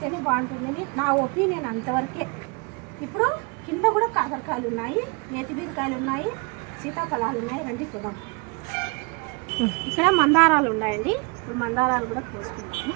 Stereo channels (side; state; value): left; quieter; 30.4 dB